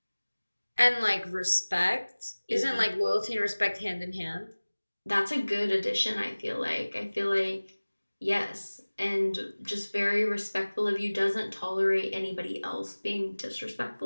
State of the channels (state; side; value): inverted; both; correlation -1.00